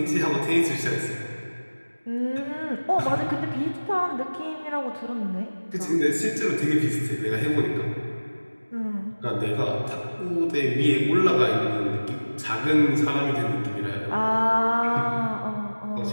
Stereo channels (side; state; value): both; inverted; correlation -1.00